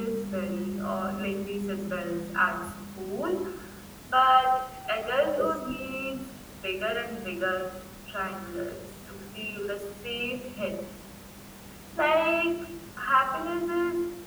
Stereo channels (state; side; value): identical; both; correlation 1.00